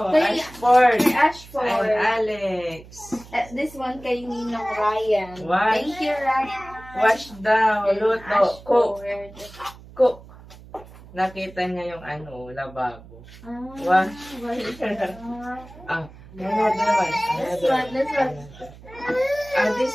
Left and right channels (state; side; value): noise; right; hum, 20 dB below the sound